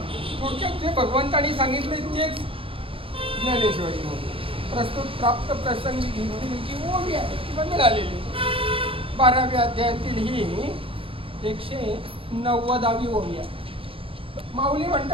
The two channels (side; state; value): left; late; 0.27 ms